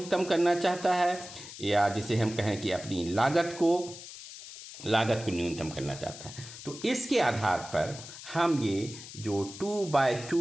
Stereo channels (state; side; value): noise; left; hiss, 14 dB below the sound